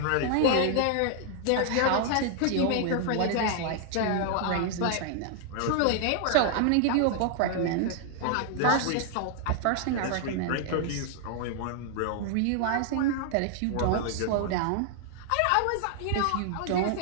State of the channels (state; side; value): different; both; correlation 0.00